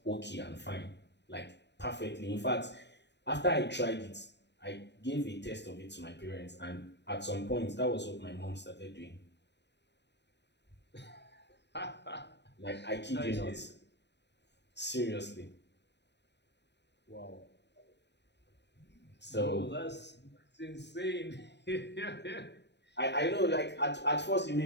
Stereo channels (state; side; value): late; right; 0.50 ms